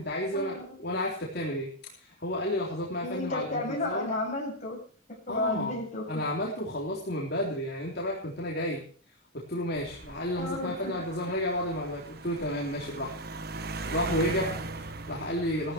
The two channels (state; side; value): normal; both; correlation 0.01